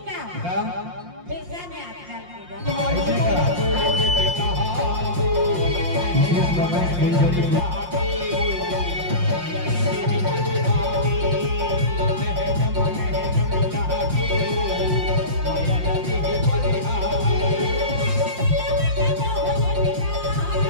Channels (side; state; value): left; late; 5.7 ms